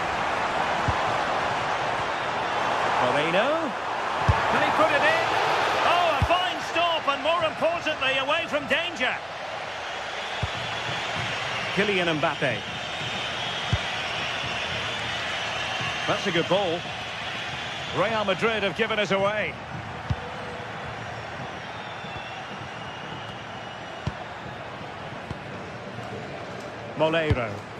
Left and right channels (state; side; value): identical; both; correlation 1.00